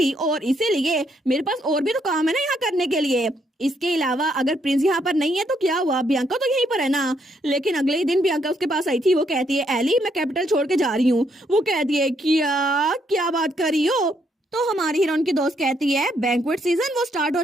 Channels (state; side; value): normal; both; correlation 0.73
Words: और इसीलिए मेरे पास और भी तो काम है ना यहाँ करने के लिए। इसके अलावा अगर प्रिंस यहाँ पर नहीं है तो क्या हुआ, बियांका तो यहीं पर है ना। लेकिन अगले ही दिन बियांका उसके पास आई थी, वो कहती है एली मैं कैपिटल छोड़ के जा रही हूँ। वो कहती है क्या क्या बात कर रही हो? तो हमारी हीरोइन की दोस्त कहती है बैंक्वेट सीजन वो स्टार्ट